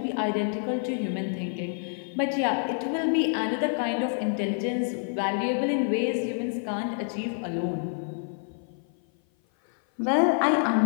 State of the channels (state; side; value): silent; right; 55 dB below the other